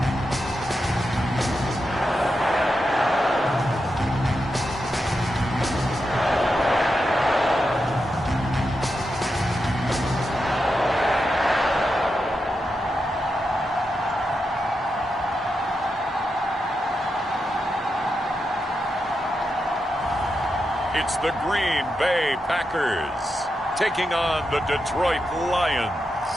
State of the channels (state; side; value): normal; both; correlation 0.87